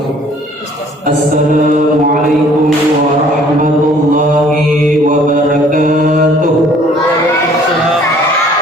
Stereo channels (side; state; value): both; normal; correlation 0.56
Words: Assalamualaikum warahmatullahi wabarakatuh.